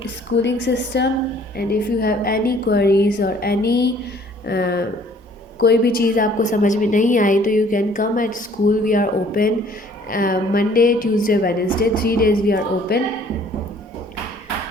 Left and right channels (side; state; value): both; normal; correlation 0.57